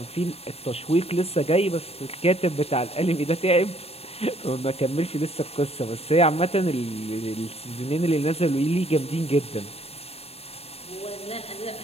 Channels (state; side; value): late; right; 0.29 ms